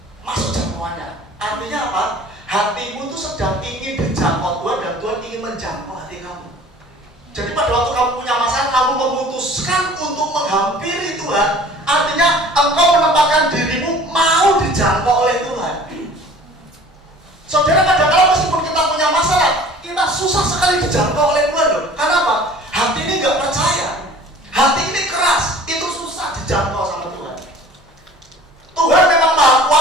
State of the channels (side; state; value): both; normal; correlation 0.47